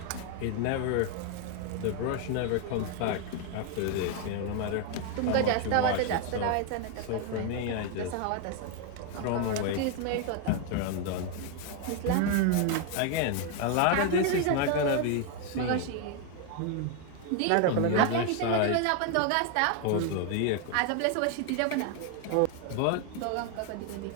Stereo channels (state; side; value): different; both; correlation 0.01